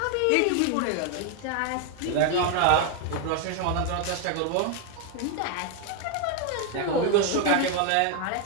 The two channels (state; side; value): different; both; correlation 0.01